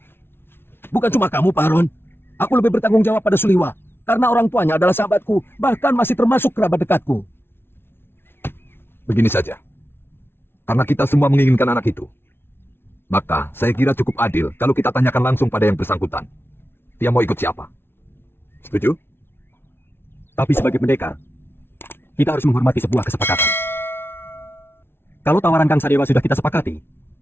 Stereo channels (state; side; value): late; right; 0.11 ms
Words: Bukan cuma kamu, Pak Aron. Aku lebih bertanggung jawab pada Suliwa. Karena orang tuanya adalah sahabatku, bahkan masih termasuk kerabat dekatku. Begini saja. Karena kita semua menginginkan anak itu, maka saya kira cukup adil kalau kita tanyakan langsung pada yang bersangkutan. Dia mau ikut siapa? Setuju? Tapi sebagai pendekar, kita harus menghormati sebuah kesepakatan. Kalau tawaran Kang Sadewa sudah kita sepakati,